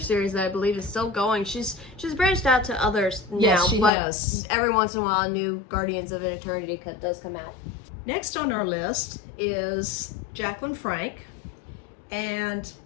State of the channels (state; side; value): drops out; right; at 3.9 s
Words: that I believe is still going. She's branched out to others now, yes, she but has. Every once in a while, a new Guardians of Eternity does come out. Next on our list is Jacqueline Frank, and